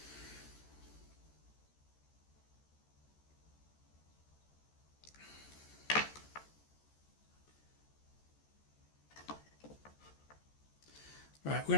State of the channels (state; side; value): late; right; 14 ms